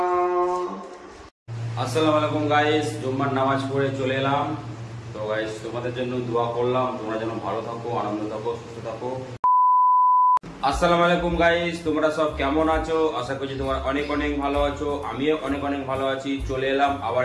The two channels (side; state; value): both; identical; correlation 1.00